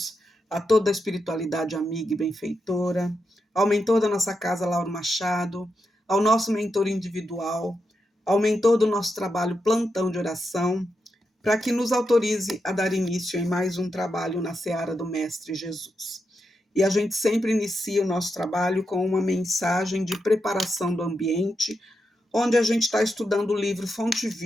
a toda a espiritualidade amiga e benfeitora, ao mentor da nossa casa, Lauro Machado, ao nosso mentor individual, ao mentor do nosso trabalho Plantão de Oração, para que nos autorize a dar início em mais um trabalho na Seara do Mestre Jesus. E a gente sempre inicia o nosso trabalho com uma mensagem de preparação do ambiente, onde a gente está estudando o livro Fonte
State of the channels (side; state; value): both; normal; correlation 0.86